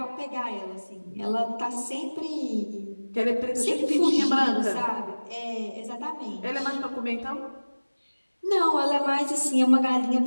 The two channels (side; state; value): both; inverted; correlation -1.00